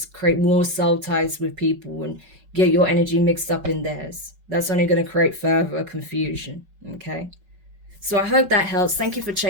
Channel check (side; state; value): left; late; 5.3 ms